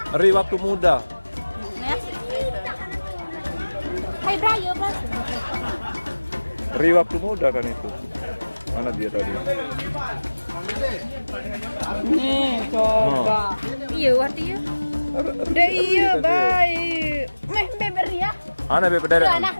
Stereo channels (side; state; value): both; inverted; correlation -1.00